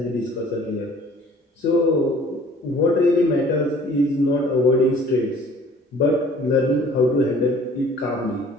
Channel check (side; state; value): both; normal; correlation 0.52